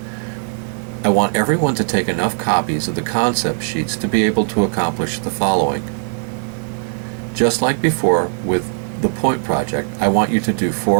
I want everyone to take enough copies of the concept sheets to be able to accomplish the following. Just like before with the point project, I want you to do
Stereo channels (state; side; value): silent; left; digital silence